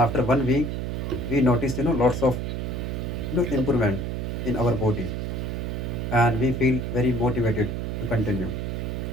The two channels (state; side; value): noise; right; hum, 3 dB below the sound